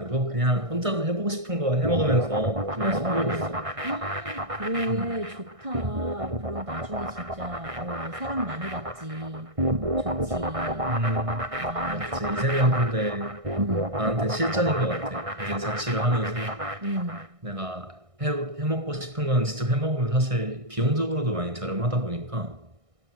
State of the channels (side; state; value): left; late; 1.6 ms